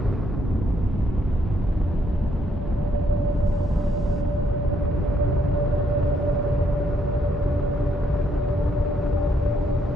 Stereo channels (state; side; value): normal; both; correlation 0.73